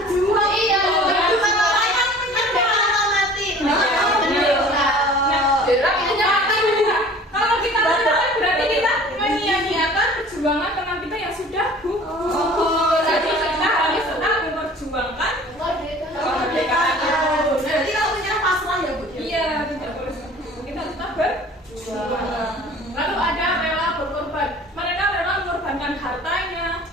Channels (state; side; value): normal; both; correlation 0.46